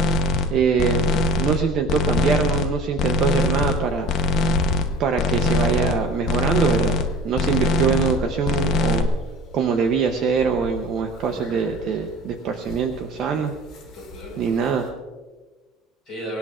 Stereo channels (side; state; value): both; normal; correlation 0.43